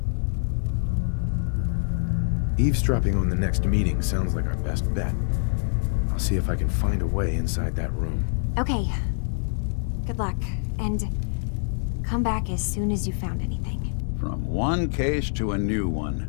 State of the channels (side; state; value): right; silent; digital silence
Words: Eavesdropping on the next meeting sounds like our best bet. I'll see if I can find a way inside that room. Okay. Good luck, and come back as soon as you found anything. From one case to a new one.